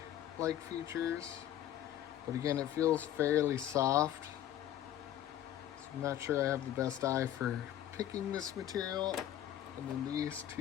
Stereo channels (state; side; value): quieter; right; 11.8 dB